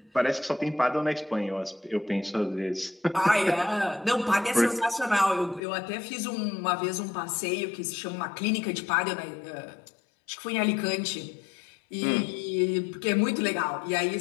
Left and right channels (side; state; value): right; drops out; at 5.6 s